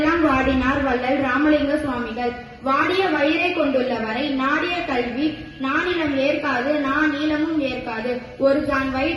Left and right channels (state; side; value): identical; both; correlation 1.00